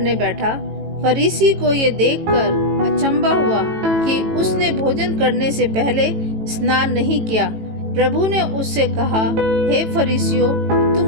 बैठा। फरीसी को ये देखकर अचंभा हुआ कि उसने भोजन करने से पहले स्नान नहीं किया। प्रभु ने उससे कहा, हे फरीसियों,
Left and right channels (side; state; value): left; late; 18 ms